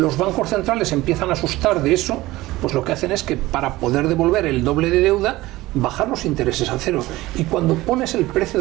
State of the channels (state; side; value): quieter; left; 18.2 dB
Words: bancos centrales empiezan a asustar de eso, pues lo que hacen es que para poder devolver el doble de deuda, bajar los intereses a cero. Y cuando pones el precio